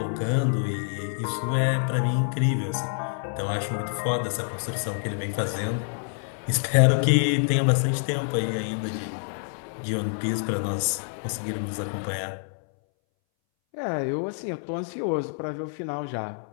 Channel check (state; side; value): silent; right; 60 dB below the other